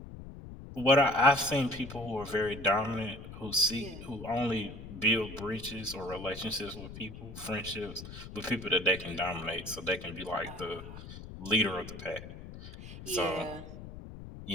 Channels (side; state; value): left; noise; rumble, 13 dB below the sound